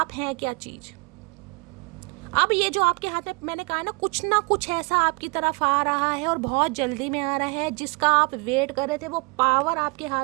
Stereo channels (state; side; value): quieter; left; 29.7 dB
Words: हैं क्या चीज़। अब ये जो आपके हाथ में मैंने कहा ना कुछ ऐसा आपकी तरफ आ रहा है और बहुत जल्दी में आ रहा है, जिसका आप वेट कर रहे थे, वो पावर आपके